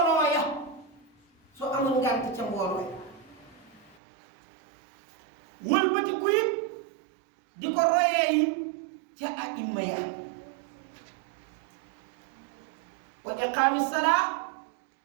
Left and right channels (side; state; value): left; drops out; at 4.0 s